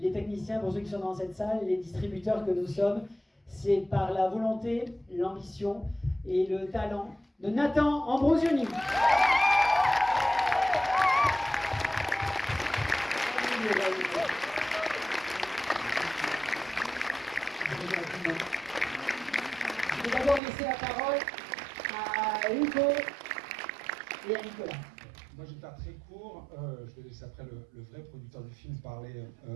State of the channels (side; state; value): left; drops out; at 20.4 s